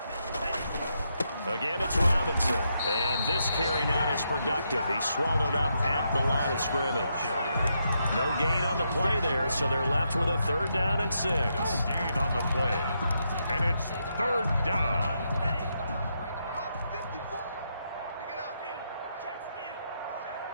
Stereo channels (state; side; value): inverted; both; correlation -0.81